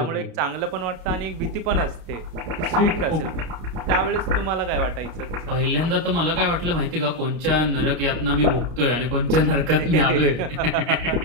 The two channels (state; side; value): late; left; 33 ms